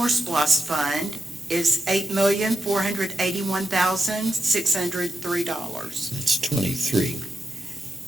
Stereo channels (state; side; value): normal; both; correlation 0.87